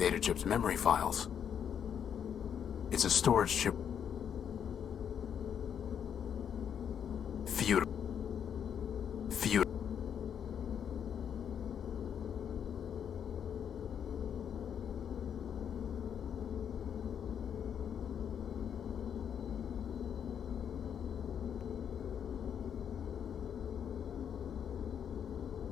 chip's memory files. It's a storage chip... Feud.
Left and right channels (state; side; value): quieter; right; 8.3 dB